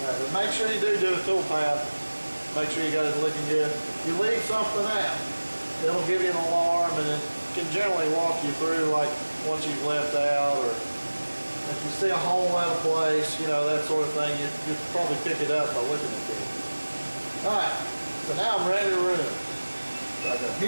But make sure you do a tool path. Make sure you got it looking good. If you leave something out, it'll give you an alarm, and it can generally walk you through like once you've left out, or if you see a hole out of place, you know, that sort of thing, you probably pick it up by looking at it. Alright, so now I'm ready to run. So I go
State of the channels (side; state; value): both; inverted; correlation -1.00